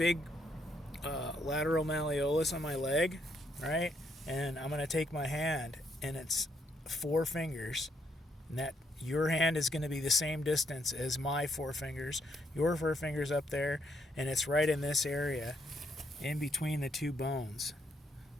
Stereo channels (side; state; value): both; normal; correlation 0.74